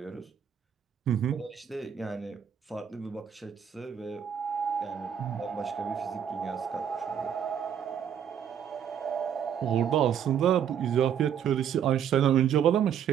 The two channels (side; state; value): left; quieter; 8.6 dB